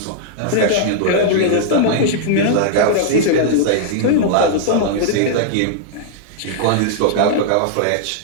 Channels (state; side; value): different; both; correlation -0.02